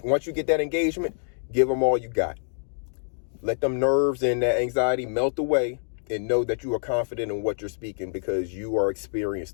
once you get that engagement, give them all you got. Let them nerves and that anxiety melt away and know that you are confident in what you're speaking because you are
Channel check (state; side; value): silent; right; digital silence